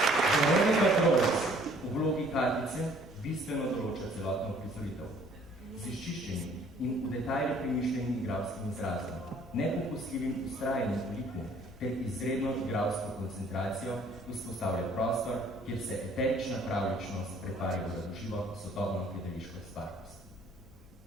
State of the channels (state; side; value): normal; both; correlation 0.58